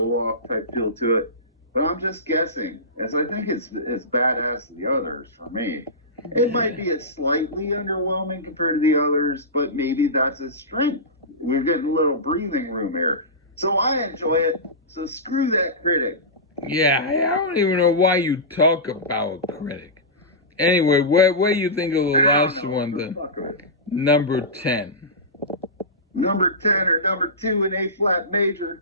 type feel to it. But I'm just guessing, as I think it's as badass as the others for me. It might be a slightly underwhelming compared to the others, but maybe that's its strength. We're getting a little breathing room here. So I enjoy it. So screw that critic. Yeah, I don't even know why you talk about critic. Anyway, what do you think of the I don't last know. one, For the fuck of it. number 10? Number 10 or number 2 in A flat major.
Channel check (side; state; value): both; normal; correlation -0.19